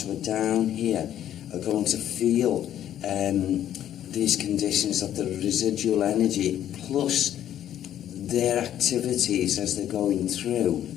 we're down here, are going to feel these conditions of the residual energy plus their activities as they're going through.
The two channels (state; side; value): quieter; right; 11.1 dB